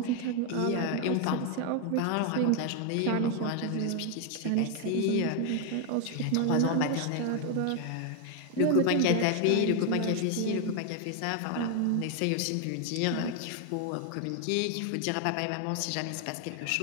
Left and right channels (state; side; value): different; both; correlation 0.00